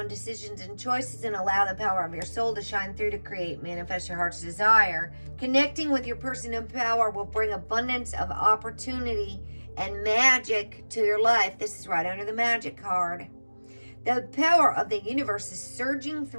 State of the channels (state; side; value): inverted; both; correlation -1.00